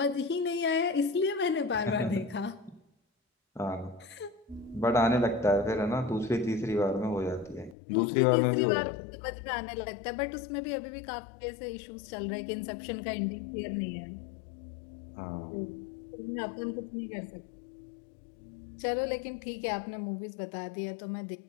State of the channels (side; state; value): right; drops out; at 7.8 s